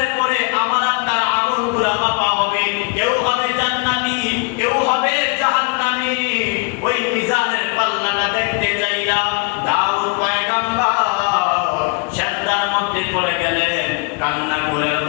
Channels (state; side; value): quieter; right; 32.0 dB